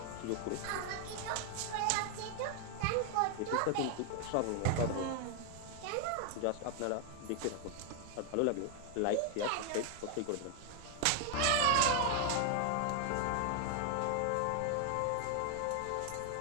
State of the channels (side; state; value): both; different; correlation 0.00